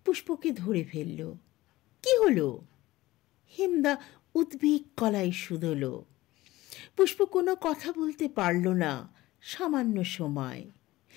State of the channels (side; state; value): right; quieter; 17.8 dB